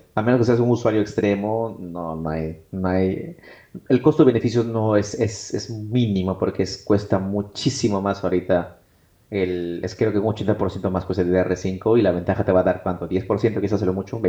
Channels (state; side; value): identical; both; correlation 1.00